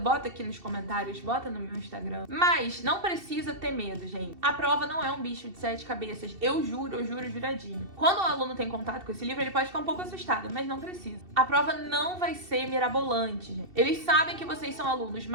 aqui nos comentários, bota no meu Instagram. Mas não precisa ter medo, gente. A prova não é um bicho de 7 cabeças. Eu juro juradinho. Quando o aluno tem contato com esse livro, ele pode ficar um pouco assustado, mas não precisa. A prova não vai ser mirabolante, gente. Eles sabem que vocês são alunos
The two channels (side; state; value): left; late; 2.7 ms